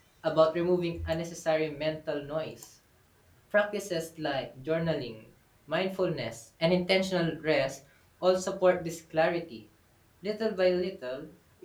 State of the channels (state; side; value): identical; both; correlation 1.00